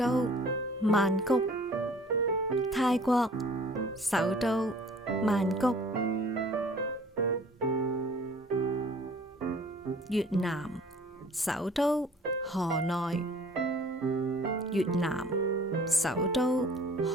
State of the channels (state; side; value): normal; both; correlation 0.51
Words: 曼谷，泰國首都曼谷，越南首都河內，越南首都